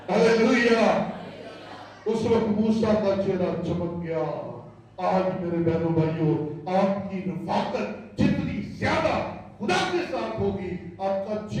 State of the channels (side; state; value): both; identical; correlation 1.00